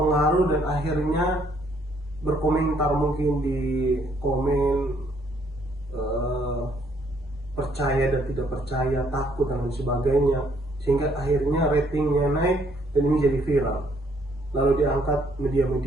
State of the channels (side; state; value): both; normal; correlation 0.67